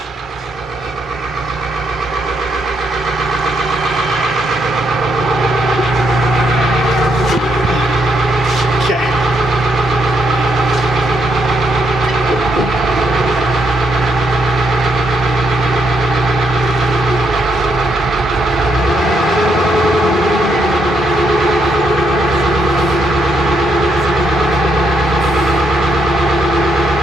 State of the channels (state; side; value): normal; both; correlation 0.77